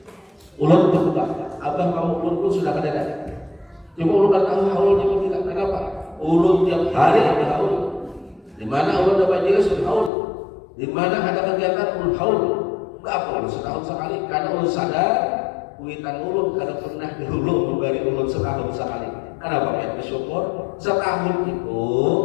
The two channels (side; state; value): right; drops out; at 10.1 s